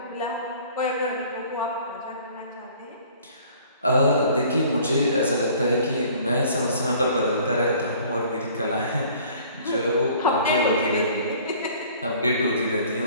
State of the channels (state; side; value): inverted; both; correlation -0.52